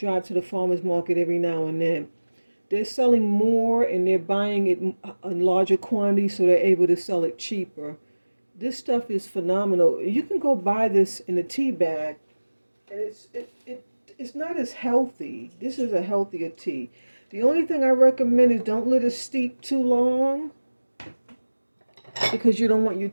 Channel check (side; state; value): both; inverted; correlation -1.00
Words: to the farmer's market every now and then. They're selling more and they're buying it in larger quantities, so they're able to sell it cheaper. This stuff is phenomenal. You can go buy this in a tea bag, and it's not as healthy. This is a healthier tea. The only thing I recommend is don't let it steep too long, because you don't want your